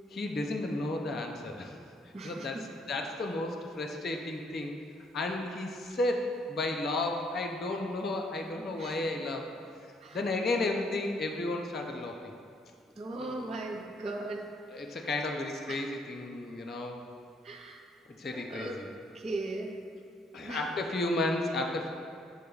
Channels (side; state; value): both; normal; correlation 0.68